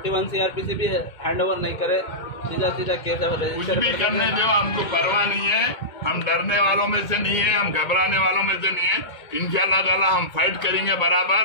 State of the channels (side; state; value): right; late; 2.2 ms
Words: CRPC भी हैंड ओवर नहीं करे, सीधा केस कुछ भी करने दो, हमको परवाह नहीं है। हम डरने वालों में से नहीं है, हम घबराने वालों में से नहीं है। इंशाअल्लाह ताला हम फाइट करेंगे